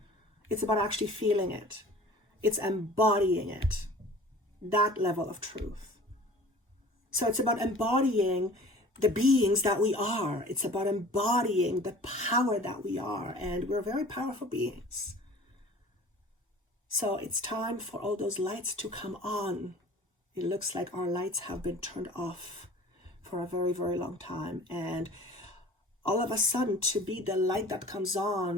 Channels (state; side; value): normal; both; correlation 0.45